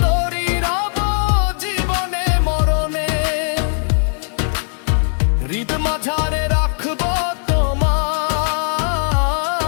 তোরই রব জীবনে মরণে। হৃদ মাঝারে রাখবো তোমায়,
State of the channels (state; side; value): silent; right; 56 dB below the other